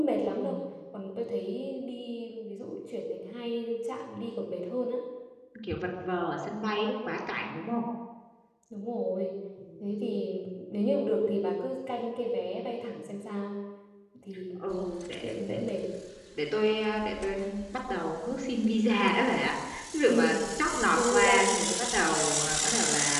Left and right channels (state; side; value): identical; both; correlation 1.00